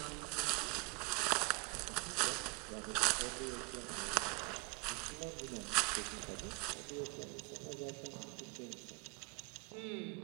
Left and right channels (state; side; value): quieter; left; 28.6 dB